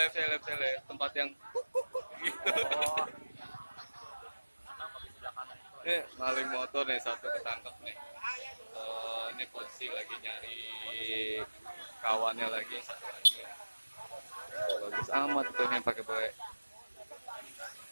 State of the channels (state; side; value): inverted; both; correlation -1.00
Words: tempat yang gitu. Oh. Kenapa di sebelah kanan itu? Maling motor nih satu ketangkep nih. Ini posisi lagi nyari kawannya lagi satu lagi. Bagus amat tuh yang pakai